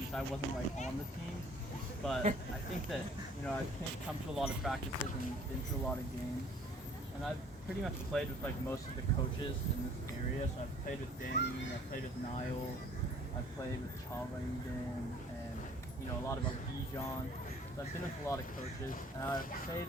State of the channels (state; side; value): normal; both; correlation 0.55